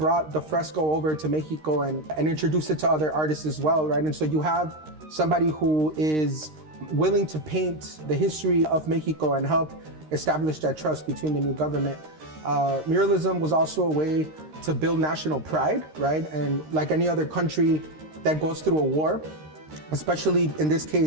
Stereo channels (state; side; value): late; left; 13 ms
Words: the fresco over to Mexico and introduced it to other artists as well, right? And so you have somebody who is willing to paint the history of Mexico and help establish that trust between the new government. Muralism was also a way to build national pride, right? And like any other country that goes through a war, especially in this